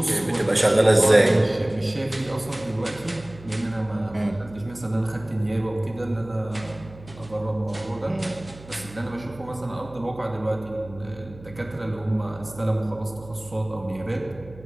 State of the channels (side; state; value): right; noise; hum, 18 dB below the sound